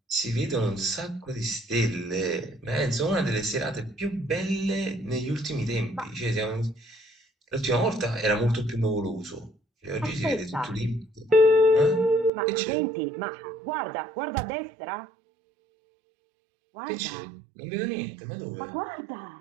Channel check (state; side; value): drops out; left; at 12.3 s